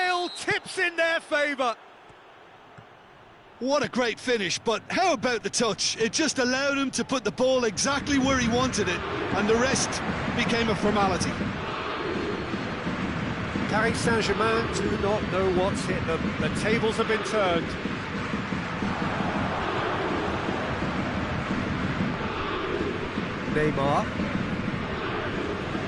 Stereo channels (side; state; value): both; identical; correlation 1.00